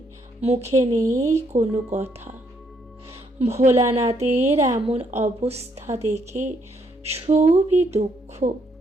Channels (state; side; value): normal; both; correlation 0.72